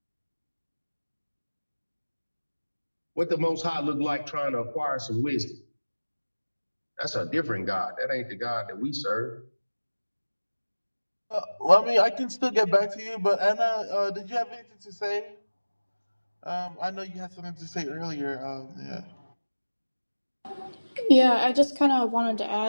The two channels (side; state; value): both; inverted; correlation -1.00